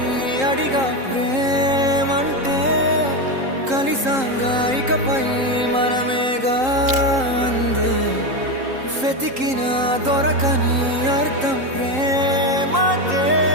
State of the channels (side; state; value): left; late; 3.8 ms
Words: అడిగా ప్రేమంటే, కలిసాంగా ఇకపై మనమేగా అందే. వెతికిన దొరకని అర్థం ప్రేమదే,